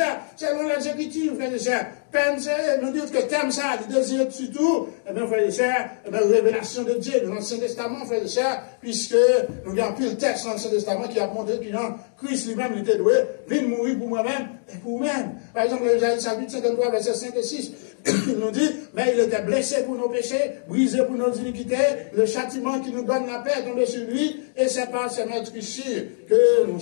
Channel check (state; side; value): silent; right; digital silence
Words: selon les Écritures, frères et sœurs. Nous disons que thème ça, le désir surtout, eh bien, frères et sœurs, révélation de Dieu dans l'Ancien Testament, frères et sœurs, puisque nous avons pris le texte dans l'Ancien Testament qui a montré que Christ lui-même était doué, vient mourir pour moi-même et pour vous-même. Par exemple, Isaïe chapitre 53, versets 5 et 6, il nous dit, mais il était blessé pour nos péchés, brisé pour nos iniquités, le châtiment qui nous donne la paix est tombé sur lui, et c'est par ses meurtrissures que nous